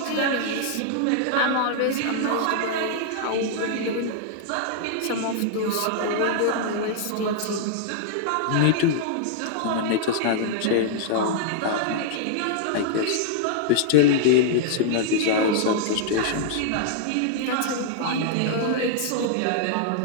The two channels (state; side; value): different; both; correlation -0.01